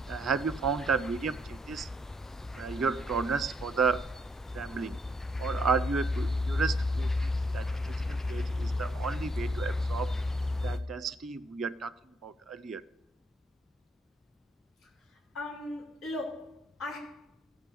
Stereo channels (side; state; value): both; normal; correlation 0.72